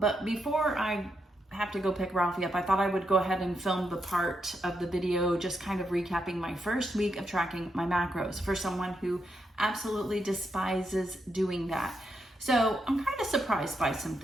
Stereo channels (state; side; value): normal; both; correlation 0.81